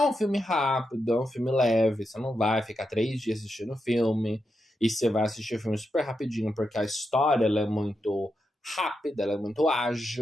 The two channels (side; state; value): both; normal; correlation 0.86